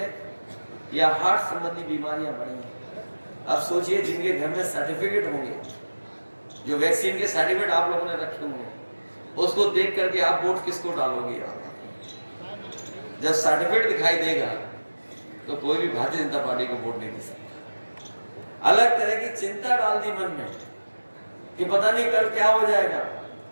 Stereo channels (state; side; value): inverted; both; correlation -1.00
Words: या हार्ट संबंधी बीमारियां बढ़ी हैं। अब सोचिए जिनके घर में सर्टिफिकेट होंगे, जो वैक्सीन के सर्टिफिकेट आप लोगों ने रखे होंगे, उसको देख करके आप वोट किसको डालोगे? जब सर्टिफिकेट दिखाई देगा तो कोई भी भारतीय जनता पार्टी को वोट नहीं दे सकता। अलग तरह की चिंता डाल दी मन में कि पता नहीं कल क्या हो जाएगा।